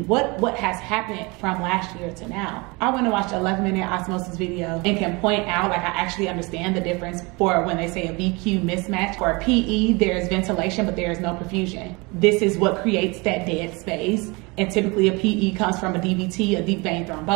has happened from last year to now? I went and watched an 11-minute osmosis video and can point out, like, I actually understand the difference for when they say a VQ mismatch. For a PE, there's ventilation, but there is no perfusion. This is what creates that dead space. And typically a PE comes from a DVT, a deep vein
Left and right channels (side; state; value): left; quieter; 26.7 dB